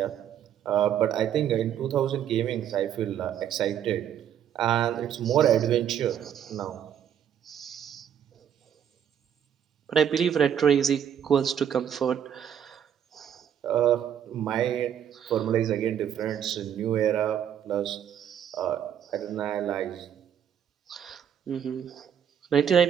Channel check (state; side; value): quieter; left; 9.2 dB